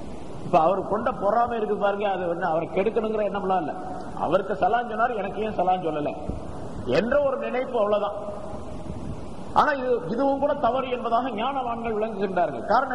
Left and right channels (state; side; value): identical; both; correlation 1.00